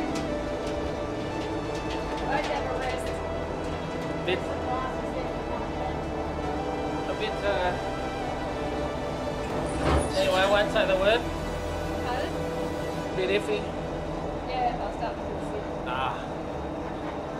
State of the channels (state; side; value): identical; both; correlation 1.00